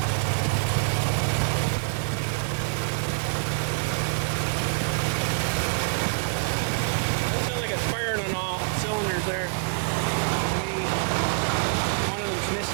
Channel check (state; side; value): silent; left; 61 dB below the other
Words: That sounds like it's firing on all cylinders there. Maybe one of them's